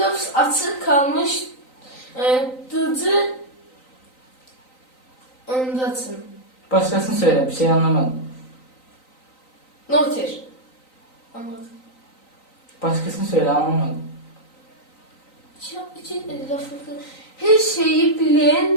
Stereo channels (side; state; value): right; late; 3.9 ms